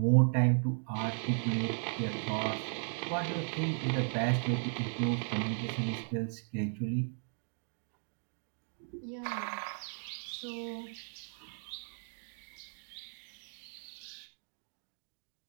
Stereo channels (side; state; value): left; silent; 54 dB below the other